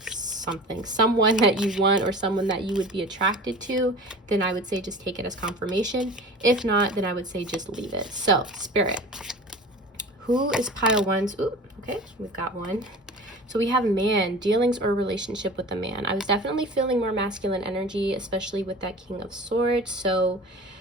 you want, or someone that you would be attracted to, then I would say just take it as confirmation. If not, then I would say just leave it. So, Spirit, who is pile 1's? Ooh, okay, we've got 1. So we have man, dealings or relationship with a man. I was definitely feeling more masculine energy, especially with that King of Swords. So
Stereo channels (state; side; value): normal; both; correlation 0.38